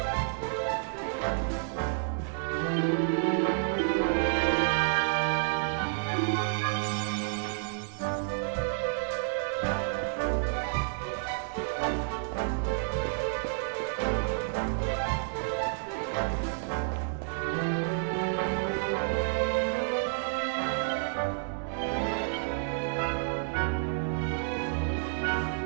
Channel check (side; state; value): left; silent; digital silence